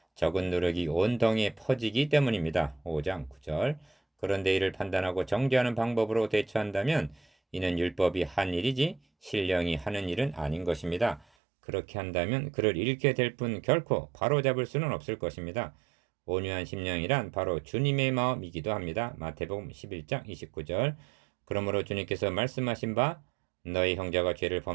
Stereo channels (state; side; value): drops out; left; at 11.2 s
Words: 적은 누룩이 온 덩이에 퍼지기 때문입니다. 5장 9절 그런데 이를 판단하고 정죄하는 방법으로 대처한다면 이는 율법이 한 일이지 신령이 하는 일은 아닌 것입니다. 그렇게 한다면 그를 잃게 될 뿐 결코 바로잡을 수는 없을 것입니다. 온유한 심령이란 바로 주님의 마음이기도 합니다. 마태복음 11장 29절 그러므로 주님께서 말씀하신 바 너희 형제가 죄를